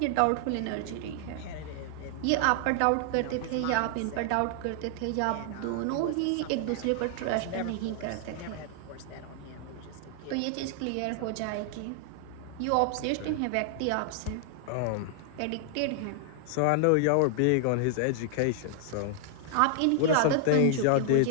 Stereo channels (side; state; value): both; different; correlation 0.00